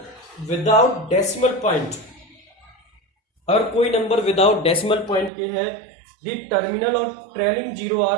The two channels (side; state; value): left; drops out; at 5.3 s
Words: without decimal point अगर कोई नंबर विदाउट डेसिमल पॉइंट के है, द टर्मिनल और trailing zero